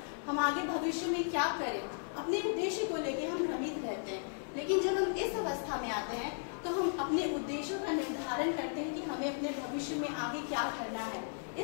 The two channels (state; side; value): silent; right; digital silence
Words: हम आगे भविष्य में क्या करें। अपने उद्देश्य को लेकर हम भ्रमित रहते हैं। लेकिन जब हम इस अवस्था में आते हैं तो हम अपने उद्देश्यों का निर्धारण करते हैं कि हमें अपने भविष्य में आगे क्या करना है।